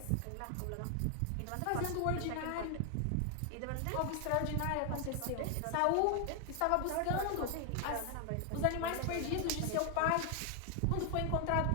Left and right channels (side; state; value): both; different; correlation 0.00